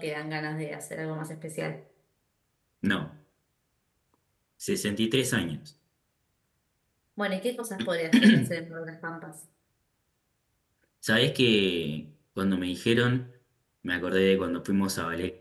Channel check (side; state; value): both; identical; correlation 1.00